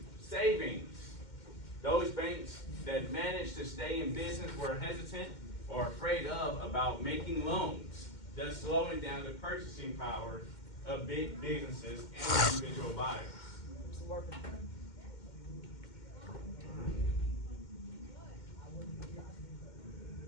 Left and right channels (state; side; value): late; right; 2.1 ms